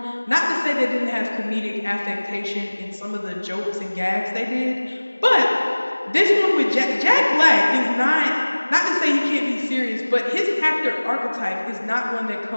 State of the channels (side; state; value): both; inverted; correlation -1.00